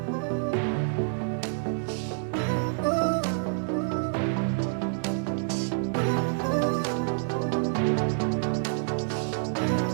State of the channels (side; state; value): left; silent; digital silence